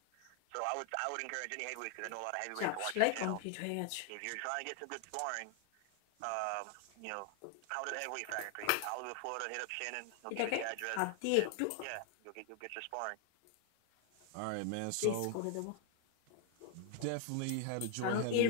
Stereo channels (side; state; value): both; different; correlation 0.00